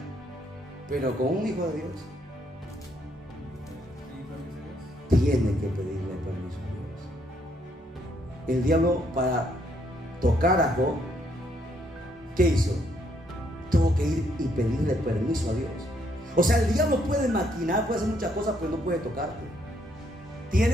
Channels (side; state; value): both; normal; correlation 0.71